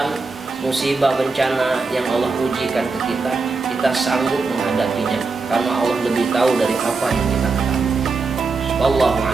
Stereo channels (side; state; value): left; quieter; 4.1 dB